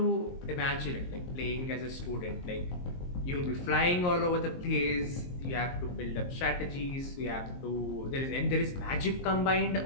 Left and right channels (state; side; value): late; right; 22 ms